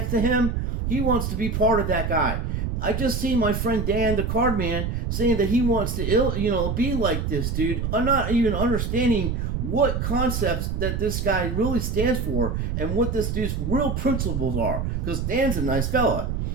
to him, he wants to be part of that guy. I just seen my friend Dan, the card man, saying that he wants to, be like this dude. I'm not even understanding what concepts that this guy really stands for and what this dude's real principles are. Because Dan's a nice fella.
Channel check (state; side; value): noise; right; rumble, 2 dB below the sound